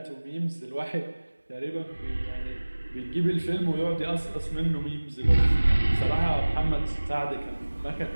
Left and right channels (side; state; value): both; inverted; correlation -1.00